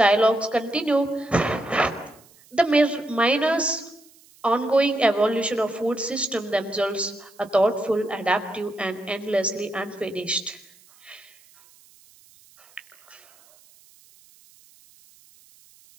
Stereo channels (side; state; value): right; noise; hiss, 28 dB below the sound